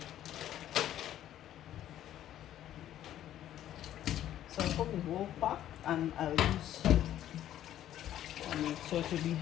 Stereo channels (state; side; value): quieter; right; 12.0 dB